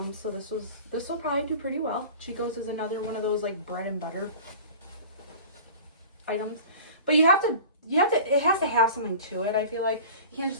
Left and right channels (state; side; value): inverted; both; correlation -0.39